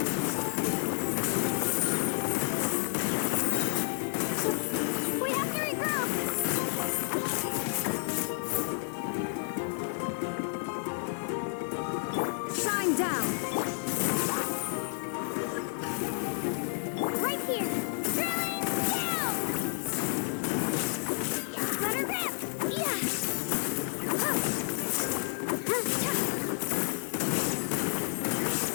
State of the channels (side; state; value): right; silent; 57 dB below the other